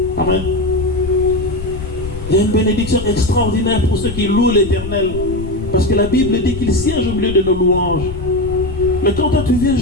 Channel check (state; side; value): noise; left; rumble, 9 dB below the sound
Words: Amen. Il y a une bénédiction extraordinaire pour ceux qui louent l'Éternel. Parce que la Bible dit qu'il siège au milieu de nos louanges. Mais quand toi tu viens